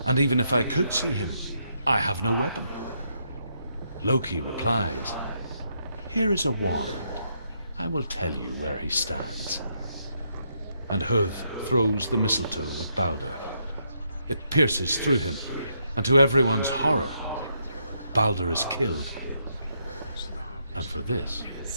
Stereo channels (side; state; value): both; inverted; correlation -0.77